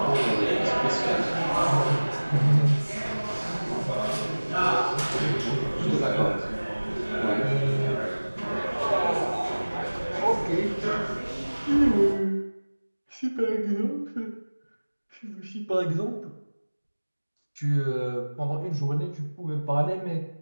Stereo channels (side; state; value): both; inverted; correlation -1.00